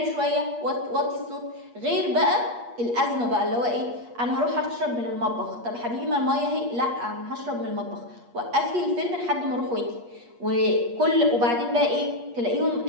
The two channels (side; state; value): left; late; 8.4 ms